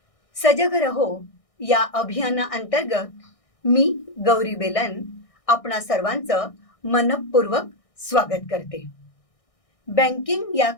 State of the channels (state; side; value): late; right; 1.6 ms